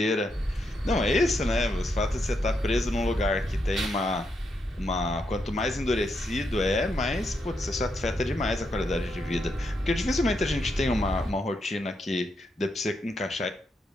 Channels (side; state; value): both; normal; correlation 0.81